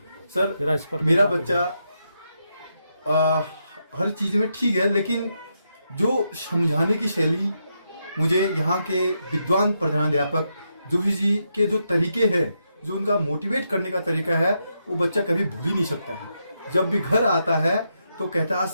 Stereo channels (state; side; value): inverted; both; correlation -0.82